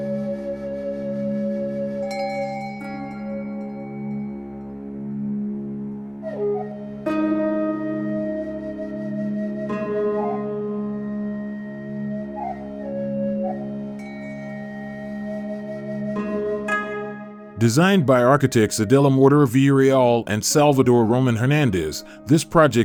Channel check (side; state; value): both; identical; correlation 1.00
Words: Designed by architects Adela Villarreal and Salvador Román Hernández, this